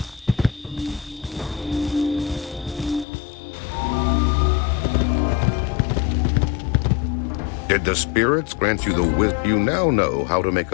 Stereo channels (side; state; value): right; drops out; at 3.1 s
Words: Did the spirits grant you the wisdom? You now know how to make